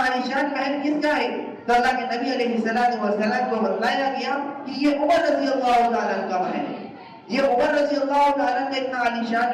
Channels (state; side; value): identical; both; correlation 1.00